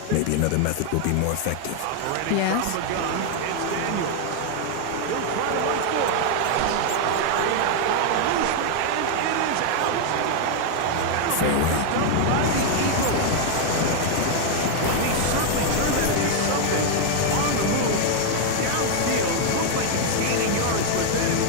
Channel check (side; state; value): both; different; correlation 0.00